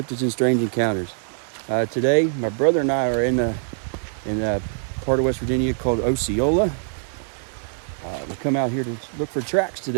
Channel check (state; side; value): silent; left; 59 dB below the other